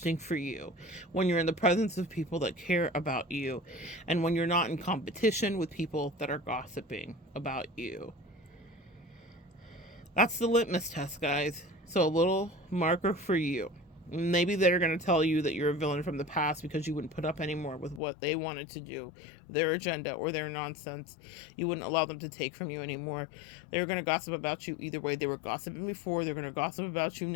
for you, when you're in the presence of people that care about you, and when you're not in competition with people that are gossiping about you. That's the litmus test, guys. So a little marker for you. Maybe they're going to tell you that you're a villain from the past because you wouldn't put up anymore with what they wanted to do, their agenda or their nonsense. You wouldn't allow them to take from you anymore. They're going to gossip about you either way. They were gossiping before. They're going to gossip about you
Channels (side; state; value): right; drops out; at 18.0 s